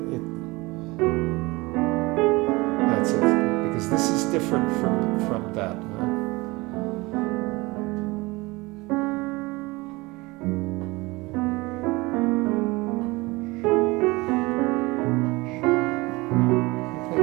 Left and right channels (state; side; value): quieter; left; 23.0 dB